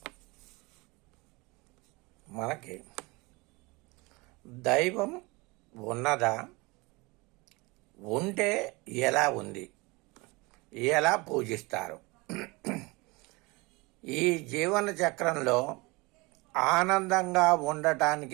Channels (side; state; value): left; quieter; 25.1 dB